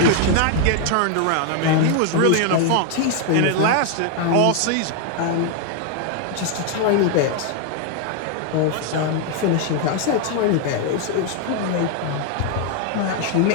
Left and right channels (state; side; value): different; both; correlation 0.00